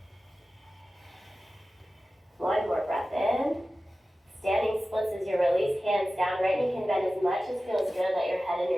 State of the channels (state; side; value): normal; both; correlation 0.95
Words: One more breath in. Standing splits as you release, hands down. Right knee can bend as much as feels good. Let your head and